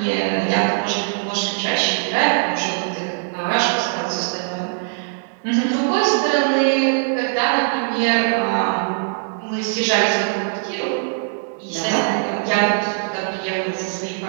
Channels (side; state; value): left; silent; 61 dB below the other